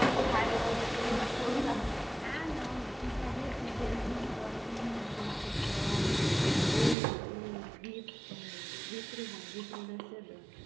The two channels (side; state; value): left; drops out; at 7.0 s